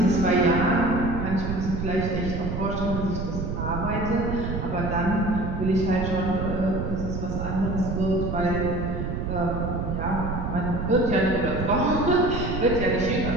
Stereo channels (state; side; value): noise; right; rumble, 3 dB below the sound